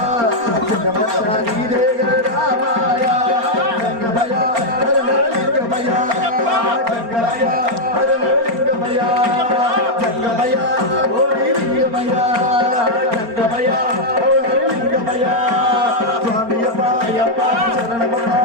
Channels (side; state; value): left; late; 4.4 ms